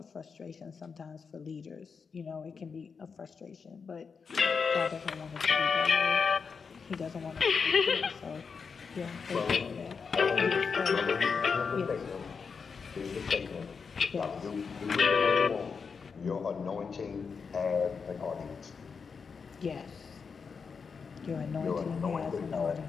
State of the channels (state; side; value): quieter; right; 5.6 dB